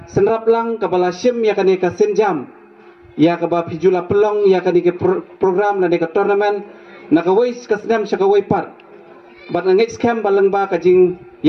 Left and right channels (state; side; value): identical; both; correlation 1.00